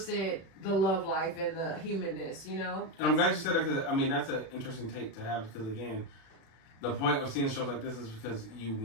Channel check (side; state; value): right; late; 36 ms